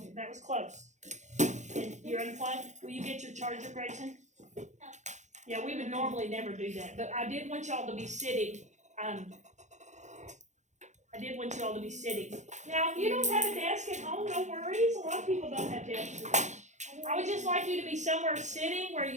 That was close. And you're unplugged? Will you get your charger, Grayson? Yeah, we would normally never do that, but I did want y'all to be sitting. Now, if you don't have a desk at home, no worries. A lot of people don't have desks. I would just like you to be somewhere sitting where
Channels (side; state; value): left; late; 0.34 ms